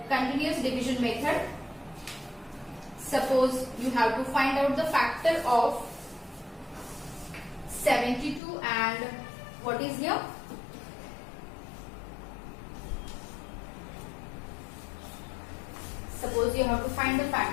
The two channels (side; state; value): right; drops out; at 8.4 s